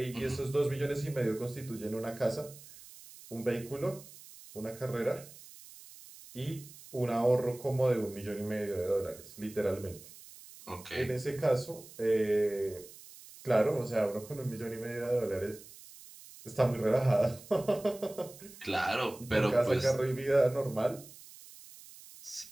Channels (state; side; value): noise; right; hiss, 19 dB below the sound